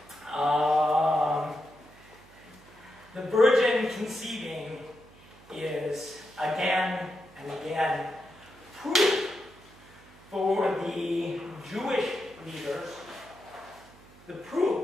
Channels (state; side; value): noise; right; hum, 24 dB below the sound